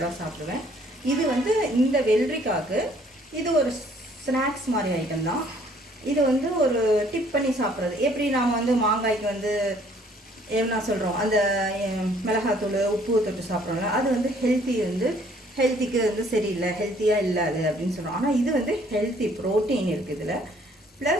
சாப்பிடுவேன். இது வந்து இந்த வெள்ளரிக்காய்க்கு இது ஒரு ஸ்நாக்ஸ் மாதிரி ஐட்டம் தான். இது வந்து ஒரு டிப் பண்ணி சாப்பிட்றது. எப்படி நாம் வந்து மாங்காய்க்கு வந்து என்ன சொல்கிறோம், அந்த மிளகாத்தூள் உப்பு தொட்டு சாப்பிட்றோம்ல, அது வந்து ஹெல்த்திக்கு வந்து சரியில்லை, ஹெல்த்தியாக இல்லை அது அப்படின்னு சொல்கிறோம். ஆனால் இது வந்து ஹெல்த்தி, ப்ரோட்டீன் இருக்குது இதில்.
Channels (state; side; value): normal; both; correlation 0.61